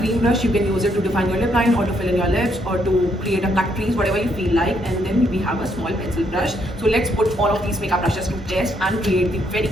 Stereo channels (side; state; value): both; normal; correlation 0.73